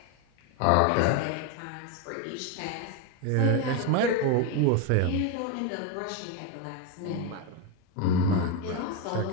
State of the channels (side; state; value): both; different; correlation 0.02